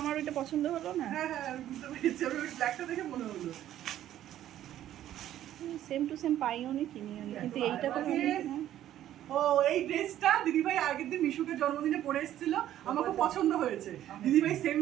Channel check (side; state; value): left; quieter; 12.2 dB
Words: ওইটা পছন্দ হলো না। হ্যাঁ হ্যাঁ, আমি বুঝতে পেরেছি। আমি ওই ব্ল্যাকটা দেখে মনে হলো। সেম টু সেম পাইও নি, কিনিও নি, কিন্তু এইটা তো ও, এই ড্রেসটা দিদিভাই আগের দিন মিশুকে জন্মদিনে পরে এসেছিল, আমাকে পছন্দ হয়েছে। দিদিভাই সেম